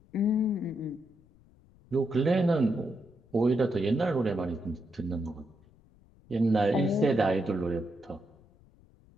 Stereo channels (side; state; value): left; noise; rumble, 28 dB below the sound